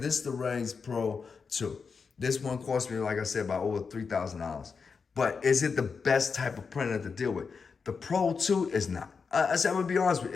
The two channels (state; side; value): quieter; right; 5.3 dB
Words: is the Raise Pro 2. This one cost me, like I said, about over $3,000. But is it the best type of printer to deal with? The Pro 2 is not. I said, I'm gonna be honest with you,